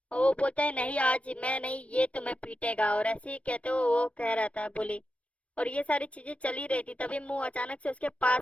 और वो बोलता है नहीं आज मैं नहीं, ये तुम्हें पीटेगा। और ऐसे ही कहते हुए वो कह रहा था बोली। और ये सारी चीजें चली रही थी, तभी मुंह अचानक से उसके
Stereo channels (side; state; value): right; late; 0.063 ms